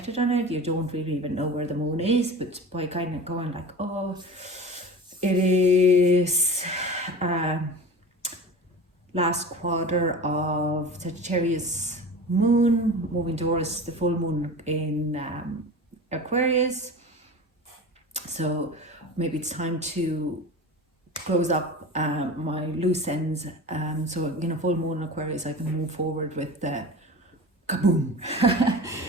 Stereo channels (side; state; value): both; normal; correlation 0.33